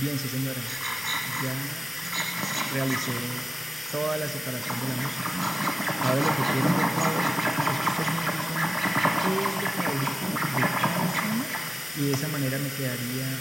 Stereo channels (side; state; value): both; normal; correlation 0.97